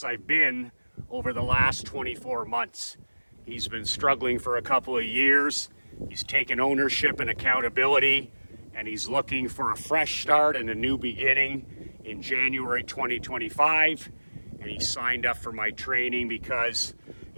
I've been over the last 24 months. He's been struggling for a couple of years. He's taken ownership and accountability, and he's looking for a fresh start and a new beginning in January 2025. And he signed up for my training because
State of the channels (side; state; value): both; inverted; correlation -1.00